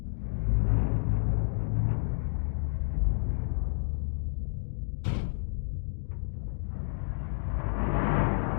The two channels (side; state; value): right; silent; 58 dB below the other